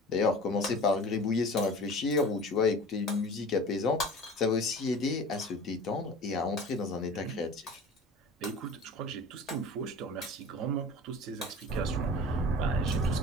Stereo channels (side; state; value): both; normal; correlation 0.39